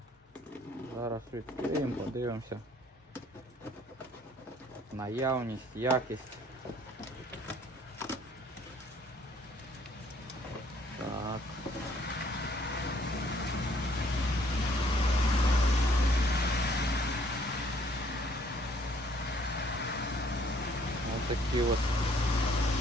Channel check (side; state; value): both; normal; correlation 0.62